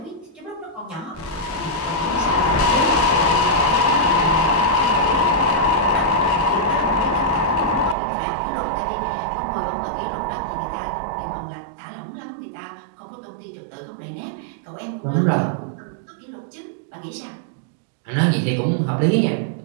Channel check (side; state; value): left; drops out; at 8.0 s